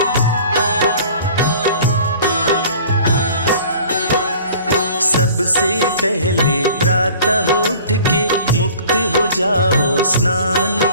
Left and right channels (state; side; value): inverted; both; correlation -0.47